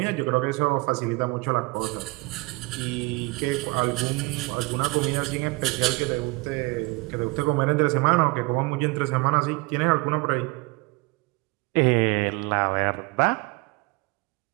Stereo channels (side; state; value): left; quieter; 25.3 dB